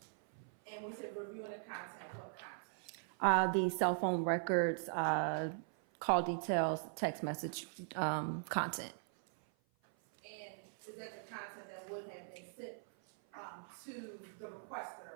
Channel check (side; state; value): left; silent; 51 dB below the other